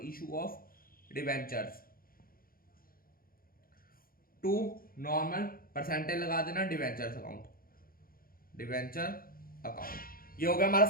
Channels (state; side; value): late; right; 0.42 ms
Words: issue of debentures to normal percentage लगा देना डिवेंचर अकाउंट। ये हो गया हमारा